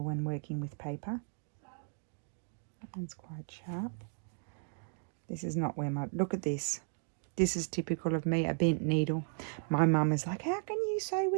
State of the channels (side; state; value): left; silent; 54 dB below the other